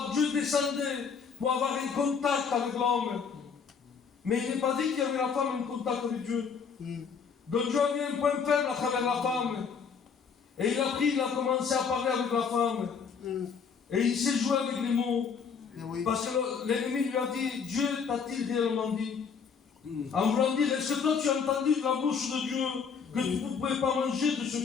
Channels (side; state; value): right; quieter; 6.1 dB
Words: Dieu descendait pour avoir un contact avec l'homme. Mais il n'est pas dit qu'il y avait la femme un contact avec Dieu. Donc Dieu a mis un point faible à travers la femme. Et il a commencé à parler avec la femme. Et il s'est joué avec les mots. Parce que l'ennemi lui a dit, Dieu t'a-t-il réellement dit? En voulant dire, est-ce que toi tu as entendu de la bouche de Dieu que tu ne pouvais pas manger de ce